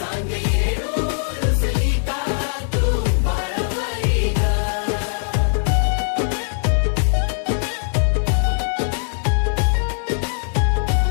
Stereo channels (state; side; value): silent; right; digital silence